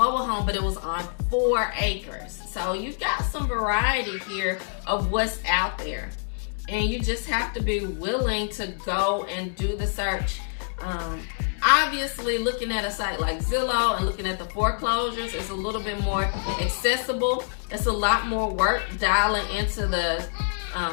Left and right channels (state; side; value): silent; right; 61 dB below the other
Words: home, but it was on 4 acres. So you got some variety here of what's out there. And you just have to be willing to go and do the search. Obviously, looking at a site like Zillow and looking at the foreclosures is a little bit more accessible. It's a lot more work dialing into the